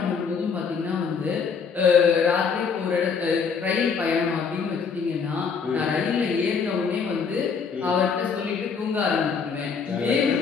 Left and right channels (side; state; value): right; quieter; 5.9 dB